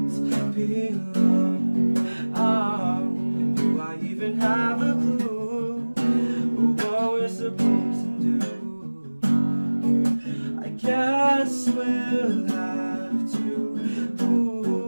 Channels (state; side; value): inverted; both; correlation -1.00